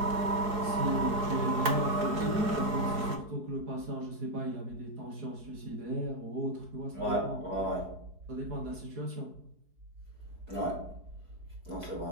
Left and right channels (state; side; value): late; left; 4.7 ms